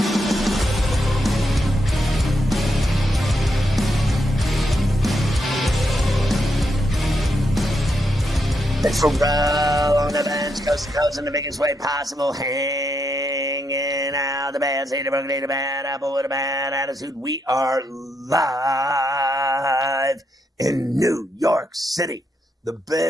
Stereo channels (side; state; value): both; normal; correlation 0.81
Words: It's Ferrall on the bench, coast to coast in the biggest way possible, hanging out the bad seed, a bad apple with a bad attitude. We are live in New York City, the